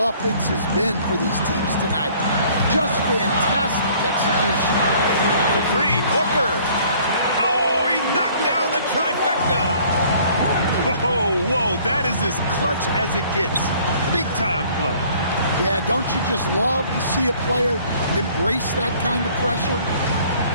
been for these teams tonight? Just fantastic execution. For 3, Booker. Oh, he knocked down the trifecta. Whoa, that is as clutch as it gets. Big time play. Yeah, don't you just love to see a player embrace that kind of pressure?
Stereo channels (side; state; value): both; inverted; correlation -0.56